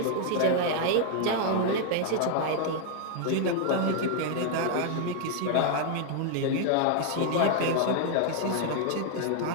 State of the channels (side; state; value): both; different; correlation 0.00